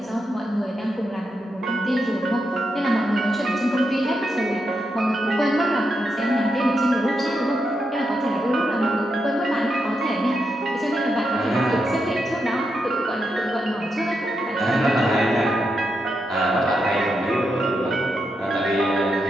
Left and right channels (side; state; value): both; normal; correlation 0.84